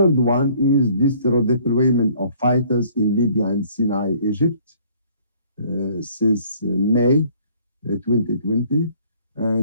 one is this redeployment of fighters in Libya and Sinai, Egypt, since May 2020.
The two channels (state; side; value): inverted; both; correlation -0.59